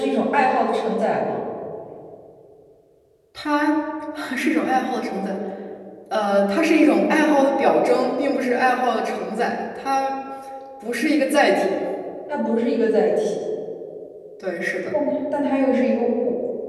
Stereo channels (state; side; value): identical; both; correlation 1.00